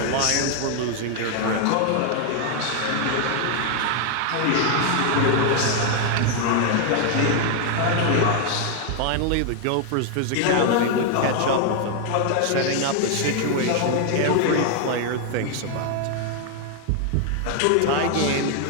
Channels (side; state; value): both; different; correlation 0.00